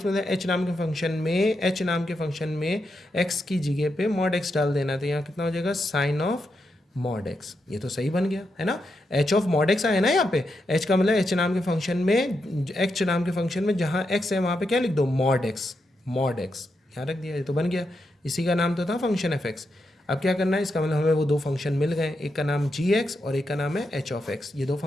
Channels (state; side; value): normal; both; correlation 0.84